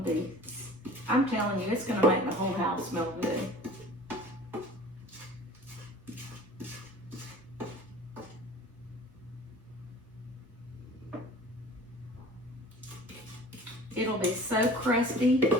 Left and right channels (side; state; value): both; normal; correlation 0.43